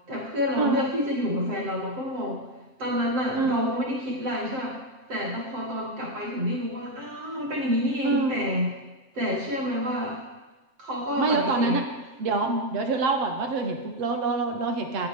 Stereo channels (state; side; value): late; left; 7.6 ms